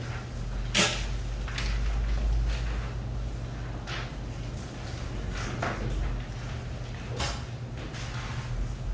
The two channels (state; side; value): identical; both; correlation 1.00